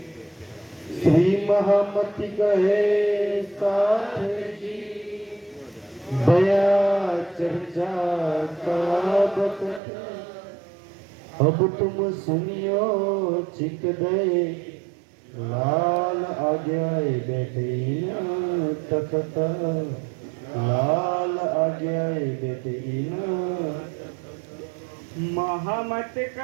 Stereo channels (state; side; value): drops out; left; at 9.8 s